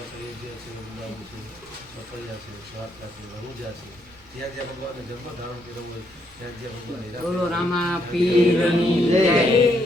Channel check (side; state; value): both; normal; correlation 0.74